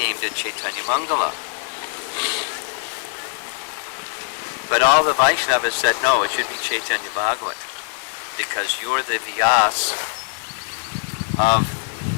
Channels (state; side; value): silent; right; 64 dB below the other